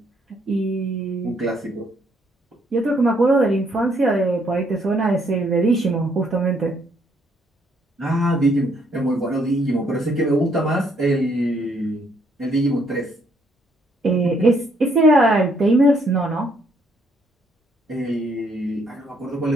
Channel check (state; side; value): normal; both; correlation 0.70